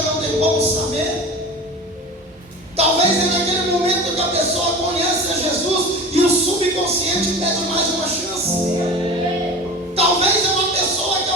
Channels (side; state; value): both; normal; correlation 0.34